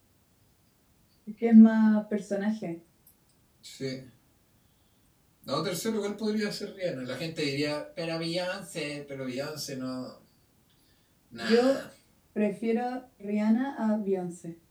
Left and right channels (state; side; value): identical; both; correlation 1.00